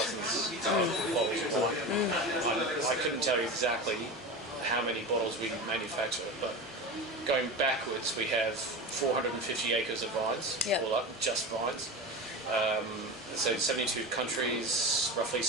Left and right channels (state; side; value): normal; both; correlation 0.27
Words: of bottles of wine. I couldn't tell you exactly how many bottles we manufacture, but going backwards, we have 450 acres of vines, Yeah. all up, just vines. So 72 countries, roughly